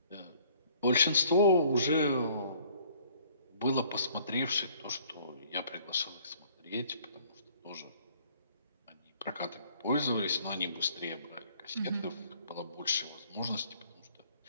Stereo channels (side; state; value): both; inverted; correlation -0.58